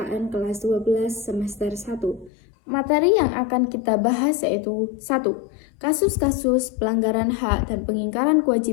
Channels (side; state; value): right; drops out; at 2.3 s